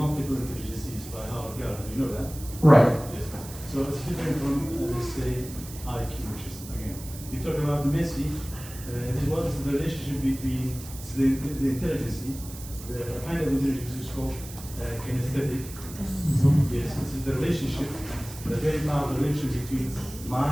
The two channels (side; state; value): right; noise; hiss, 15 dB below the sound